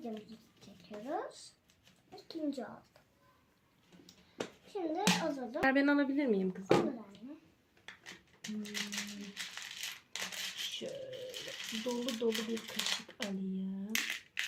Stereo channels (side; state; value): both; identical; correlation 1.00